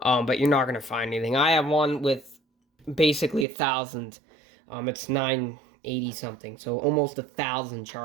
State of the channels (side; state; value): left; drops out; at 3.5 s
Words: you're not going to find anything. I have one with basically 1,000. It's 980 something, so almost 1,000